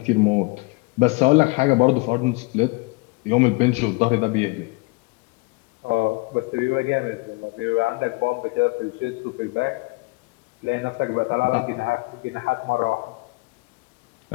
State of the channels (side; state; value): right; quieter; 26.9 dB